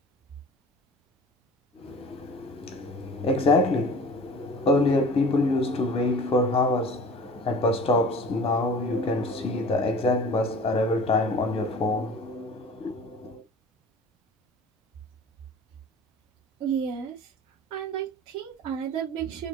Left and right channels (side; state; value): both; normal; correlation 0.42